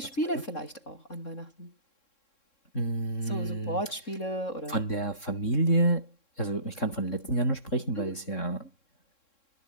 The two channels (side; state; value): right; late; 3.7 ms